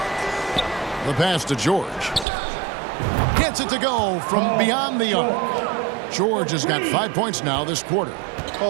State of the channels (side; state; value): left; drops out; at 2.2 s